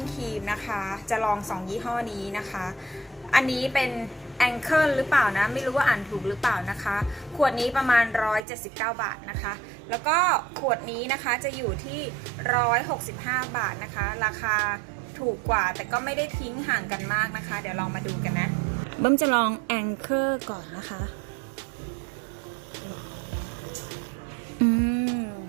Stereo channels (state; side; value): drops out; left; at 8.5 s